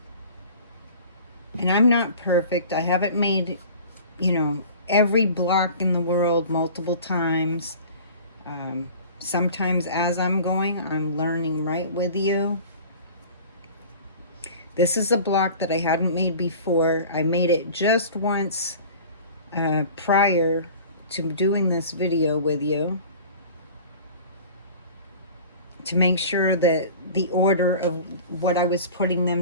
And I'm not perfect. I haven't made, every block in the world multiple times. Sometimes as I'm going, I'm learning right with you. This is a block that I hadn't made before. I made it just once prior to doing this video with you, to make sure that the order of what I was putting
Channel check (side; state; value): both; inverted; correlation -0.42